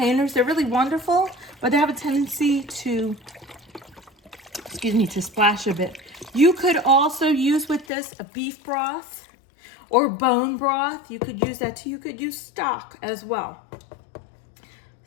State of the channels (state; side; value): drops out; right; at 7.9 s